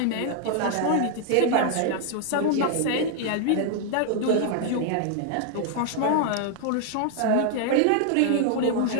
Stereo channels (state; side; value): different; both; correlation 0.00